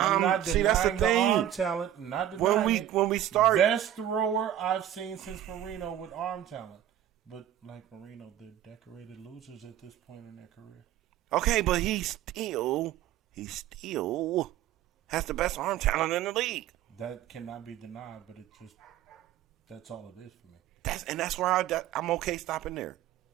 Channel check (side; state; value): left; quieter; 11.6 dB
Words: not denying that's the thing. arm talent. Not denying When we start, best thrower I've seen since Marino with arm talent. But like Marino, they're decorated losers at this point in their career. okay, but he still has the best arm talent in the league. That cannot be denied, but that's all it is for me. That's where I'm okay stopping there.